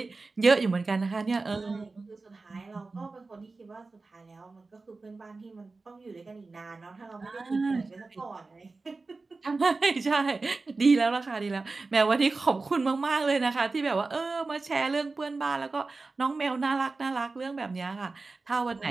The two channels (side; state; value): left; quieter; 3.8 dB